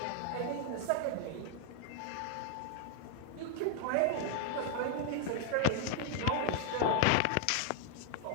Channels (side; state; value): both; different; correlation 0.00